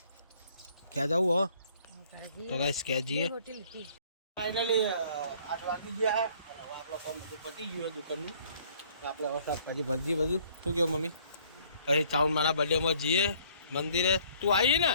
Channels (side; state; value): both; inverted; correlation -0.60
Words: ક્યાં જવું હો તો ગાઈસ ક્યાં જઈએ ફાઇનલી 8 વાગી ગયા અને હવે આપણો કામ બધું પતી ગયું દુકાનનું તો આપણે હવે શાકભાજી ભરજી બધું શું કહ્યું મમ્મી પછી ચાઉન મારા બર્થડેમાં જઈએ મંદિરે તું આવી